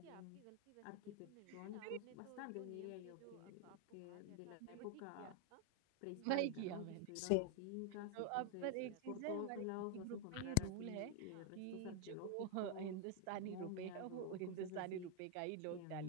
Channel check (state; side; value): different; both; correlation 0.01